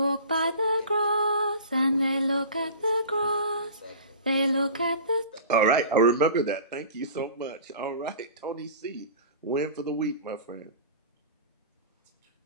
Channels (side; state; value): both; inverted; correlation -0.38